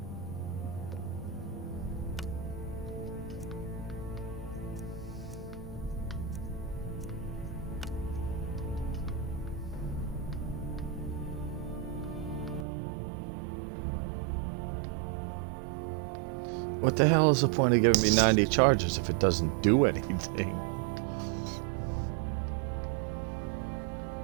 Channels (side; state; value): left; drops out; at 12.7 s